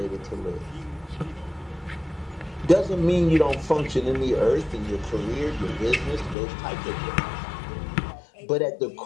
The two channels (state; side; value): drops out; right; at 6.4 s